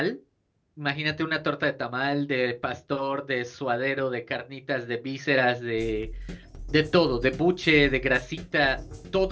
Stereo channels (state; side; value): identical; both; correlation 1.00